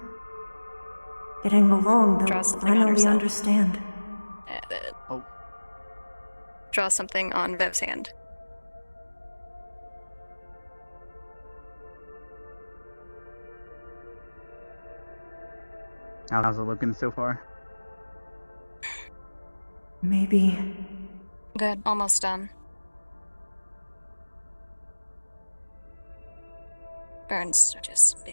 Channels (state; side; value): inverted; both; correlation -1.00